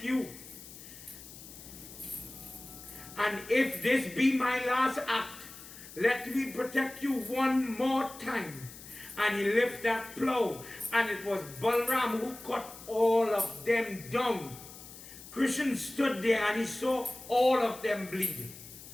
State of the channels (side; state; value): left; noise; hiss, 16 dB below the sound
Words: you. And if this be my last act, let me protect you one more time. And he lifted that plow, and it was Balaram who cut all of them down. Krishna stood there and he saw all of them bleed.